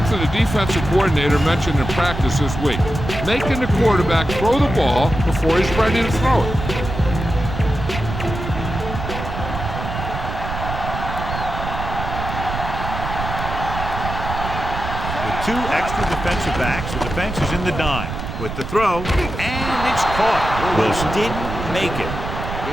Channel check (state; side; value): noise; right; rumble, 6 dB below the sound